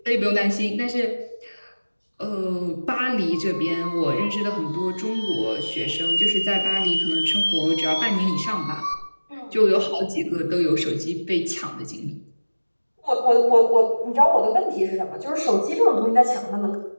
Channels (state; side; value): inverted; both; correlation -1.00